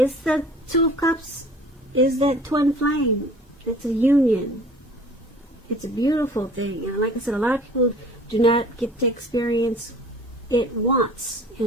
the Two of Cups is that twin flame. It's a union. It's a beautiful thing. And like I said, a lot of people do not get to experience it once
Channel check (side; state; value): both; normal; correlation 0.48